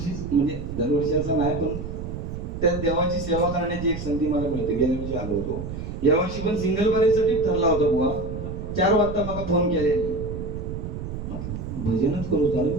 असं नाही पण त्या देवाची सेवा करण्याची एक संधी मला मिळते गेल्या वर्षी आलो होतो यावर्षी पण सिंगल बरेसाठी ठरला होता बुवा 4 वाजता मला फोन केल्याने भजनच करू झालं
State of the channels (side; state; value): right; noise; rumble, 7 dB below the sound